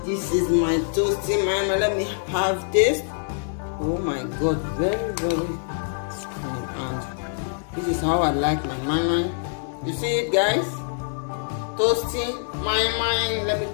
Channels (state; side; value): silent; right; 62 dB below the other